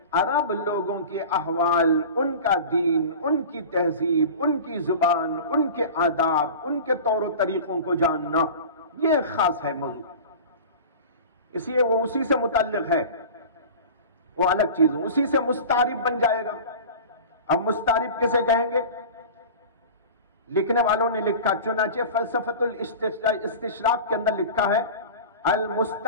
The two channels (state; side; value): inverted; both; correlation -0.35